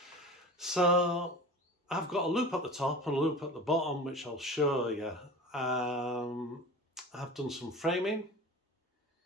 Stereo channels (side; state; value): both; normal; correlation 0.36